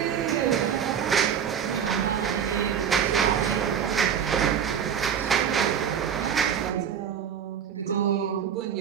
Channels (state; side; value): quieter; left; 8.1 dB